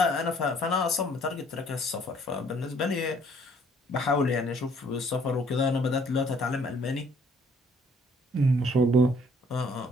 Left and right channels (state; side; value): normal; both; correlation 0.61